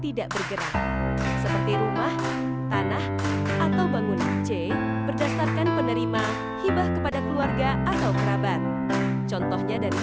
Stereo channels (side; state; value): both; identical; correlation 1.00